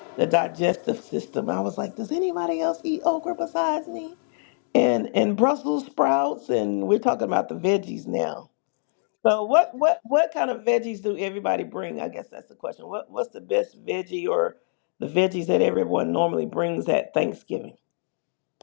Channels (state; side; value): silent; right; digital silence